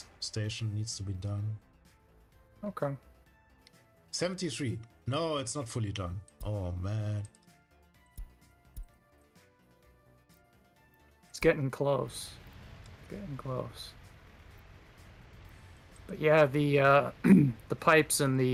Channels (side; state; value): both; identical; correlation 1.00